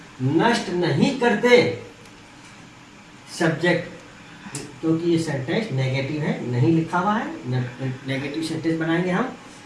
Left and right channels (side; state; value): both; identical; correlation 1.00